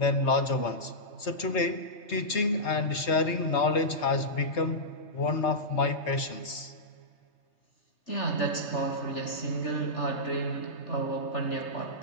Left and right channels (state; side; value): late; right; 3.3 ms